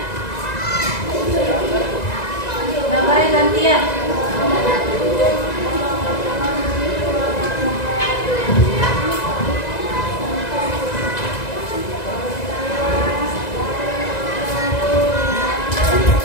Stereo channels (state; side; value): late; right; 2.0 ms